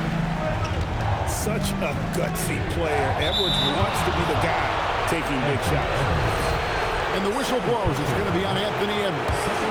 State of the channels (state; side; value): identical; both; correlation 1.00